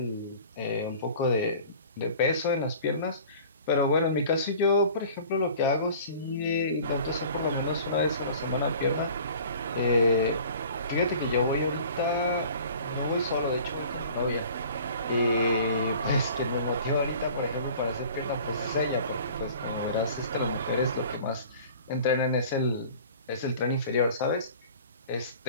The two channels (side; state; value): both; inverted; correlation -0.46